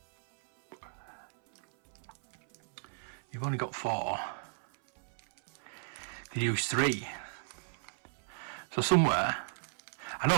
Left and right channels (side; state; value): left; silent; 55 dB below the other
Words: You've only got 4. You use 3. So somewhere, I know